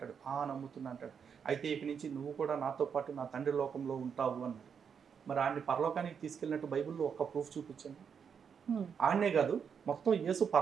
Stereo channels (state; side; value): quieter; left; 6.9 dB